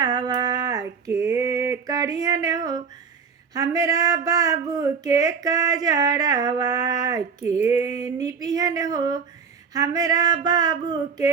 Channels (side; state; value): left; quieter; 6.2 dB